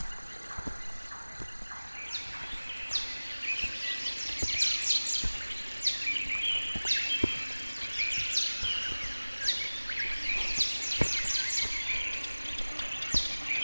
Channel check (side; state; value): both; inverted; correlation -1.00